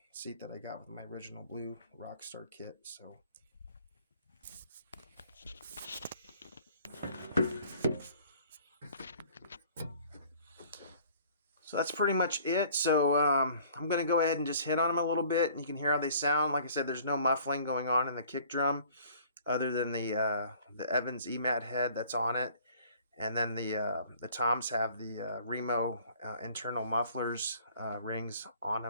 seat that I got with my original blue Rockstar kit. So. So that's pretty much it. So I'm going to go ahead and just hit on them a little bit, and you can hear how they sound. Like I said, there's no muffling going on in the kick drum other than the Evans EMAD head that's on it. And then the toms have the Remo internal mufflers rings on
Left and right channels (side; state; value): both; inverted; correlation -0.53